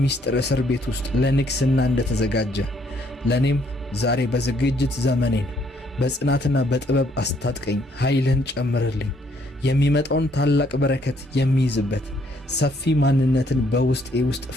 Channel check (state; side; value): normal; both; correlation 0.68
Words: እስር ቤት ውስጥ ለንግሥና እንደተዘጋጀ ለእኔም ዛሬ በዝግጅት ዘመኔን በጽናትና በጥበብ አስታጥቀኝ። ኃይልህን ጨምርልኝ። የሚመጣውን ታላቅ በረከት የሚይዝበት ሰፊ ማንነትን በውስጤ ውስጥ